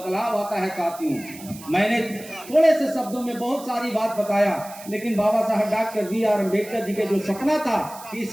आता है साथियों? मैंने थोड़े से शब्दों में बहुत सारी बात बताया, लेकिन बाबा साहब डॉक्टर B.R. अम्बेडकर जी के जो सपना था,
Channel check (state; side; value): noise; right; hiss, 17 dB below the sound